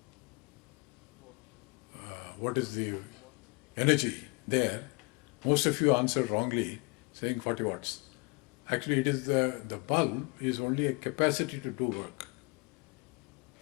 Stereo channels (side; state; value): right; quieter; 29.3 dB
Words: energy there, most of you answered wrongly, saying 40 watts. Actually, it is the bulb is only a capacity to do work.